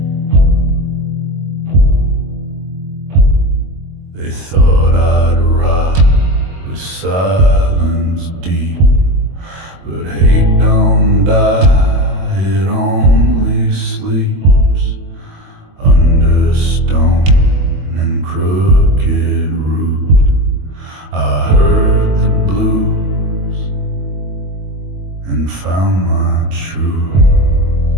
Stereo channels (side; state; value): left; late; 22 ms